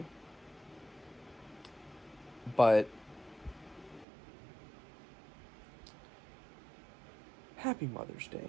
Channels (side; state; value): left; drops out; at 4.0 s